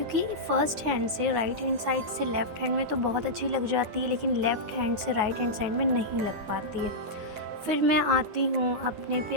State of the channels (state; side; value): late; left; 9.4 ms